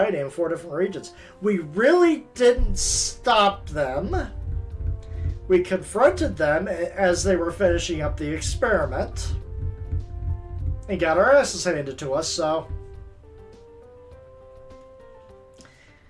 in 4 different regions. We really didn't stop them. We confronted them as they were finishing up the experiment. And got our asses handed to us, so...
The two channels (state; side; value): identical; both; correlation 1.00